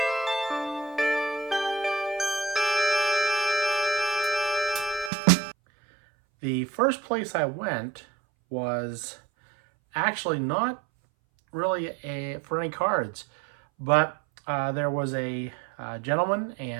The first place I went was actually not really for any cards, but there was a gentleman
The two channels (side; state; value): left; drops out; at 5.1 s